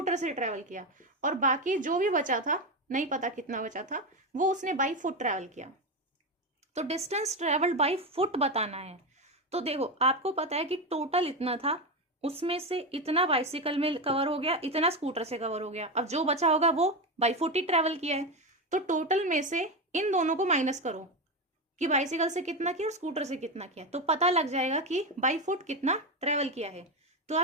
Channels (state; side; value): normal; both; correlation 0.14